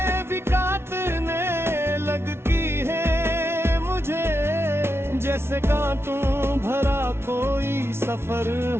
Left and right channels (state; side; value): late; left; 0.12 ms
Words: भी काटने लगती है मुझे, जैसे कांटों भरा कोई सफर